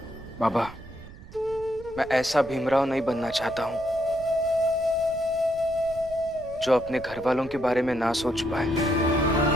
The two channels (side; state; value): right; noise; rumble, 17 dB below the sound